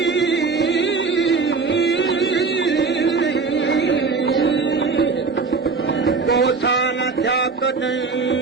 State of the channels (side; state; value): left; quieter; 4.6 dB